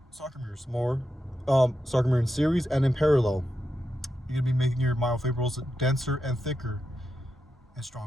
sarcomeres, more sarcomere in series and in parallel. You're gonna be making your myofibrils denser and thicker and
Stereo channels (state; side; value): normal; both; correlation 0.87